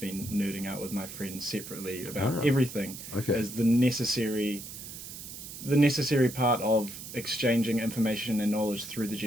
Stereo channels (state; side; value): noise; right; hiss, 11 dB below the sound